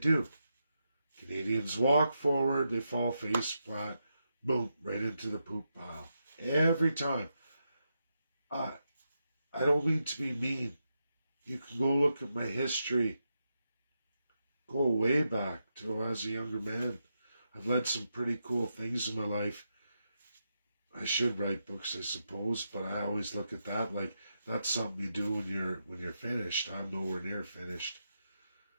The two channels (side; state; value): both; inverted; correlation -0.85